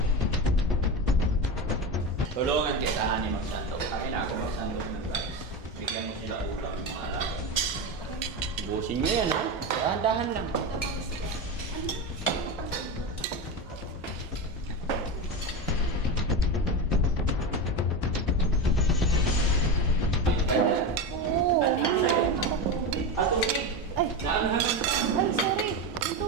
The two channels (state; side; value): normal; both; correlation 0.19